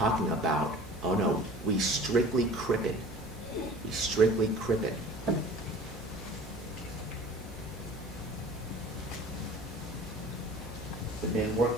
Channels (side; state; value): both; normal; correlation 0.43